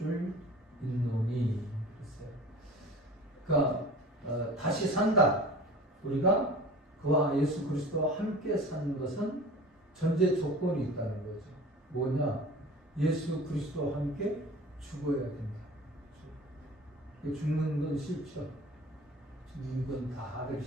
믿노니 그러니까 다시 산다. 우리가 그와 예수 그리스도와 함께 사는 것은 전제 조건이 있다는 거죠. 뭐냐? 예수 그리스도와 함께 죽어야 된다. 죽는 건 싫죠. 죽는 건 다 하기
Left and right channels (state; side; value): normal; both; correlation 0.41